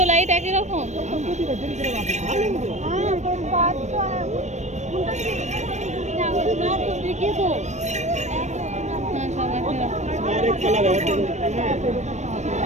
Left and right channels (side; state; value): left; late; 0.34 ms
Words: লাইট একই রকম।